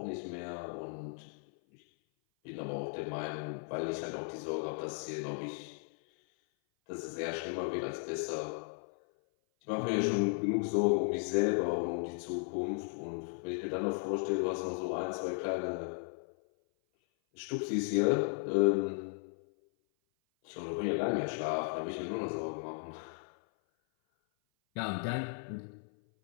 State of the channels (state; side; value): silent; right; 54 dB below the other